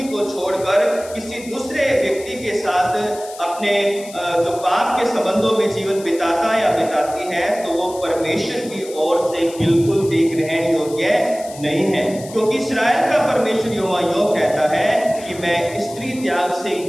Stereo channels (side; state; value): left; noise; hiss, 17 dB below the sound